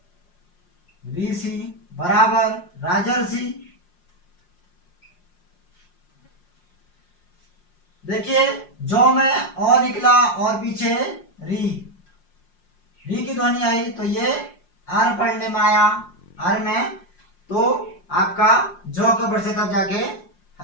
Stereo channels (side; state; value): right; late; 5.6 ms